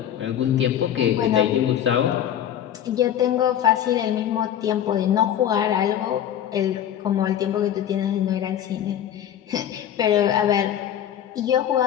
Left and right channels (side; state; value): right; quieter; 10.4 dB